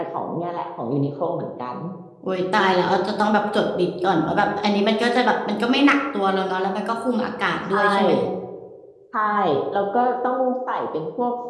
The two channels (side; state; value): both; identical; correlation 1.00